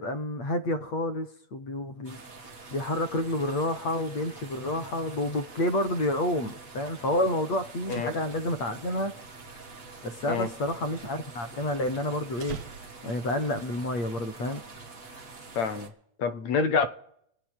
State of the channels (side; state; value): right; late; 8.3 ms